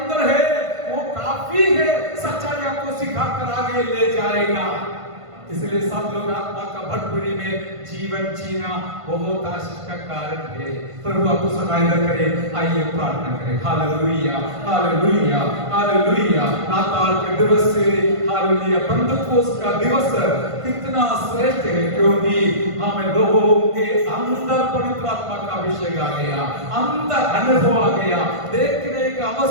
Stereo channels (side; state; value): left; late; 1.5 ms